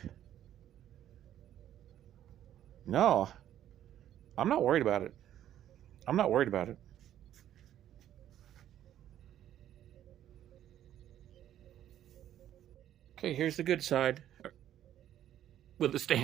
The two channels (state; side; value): quieter; left; 11.5 dB